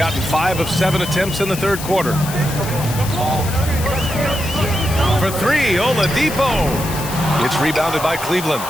5 of 7 attempts in the third quarter. For 3, Oladipo. It's rebounded by Cleveland.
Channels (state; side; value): noise; left; hiss, 10 dB below the sound